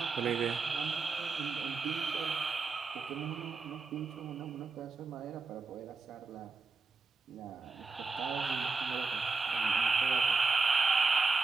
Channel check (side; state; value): left; quieter; 4.1 dB